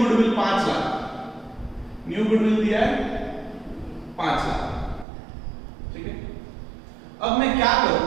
5 lakh, new goodwill दिया है 5 लाख। ठीक है, अब मैं क्या करूं?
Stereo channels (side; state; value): left; drops out; at 5.1 s